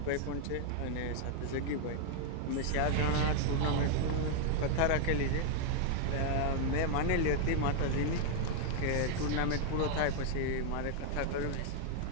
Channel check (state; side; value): different; both; correlation 0.00